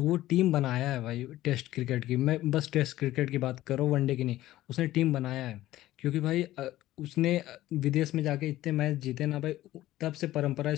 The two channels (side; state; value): right; quieter; 15.2 dB